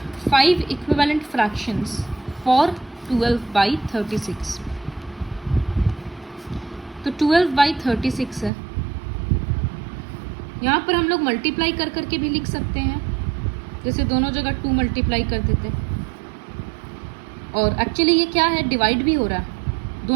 5 equivalent fractions for 12/36। तो 12/36 है, यहाँ पर हम लोग मल्टीप्लाई कर करके भी लिख सकते हैं, जैसे दोनों जगह 2 मल्टीप्लाई कर देते। और एक्चुअली ये क्या है, डिवाइड भी हो रहा है,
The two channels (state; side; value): drops out; left; at 8.5 s